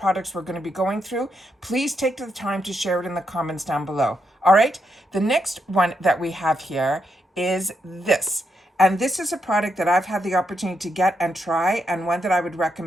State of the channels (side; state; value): both; normal; correlation 0.80